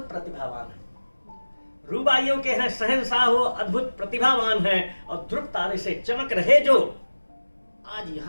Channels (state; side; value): inverted; both; correlation -1.00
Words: प्रतिभावान है। रुबाइयों के हैं शहंशाह हो, अद्भुत प्रतिभावान है, और ध्रुव तारे से चमक रहे जो आज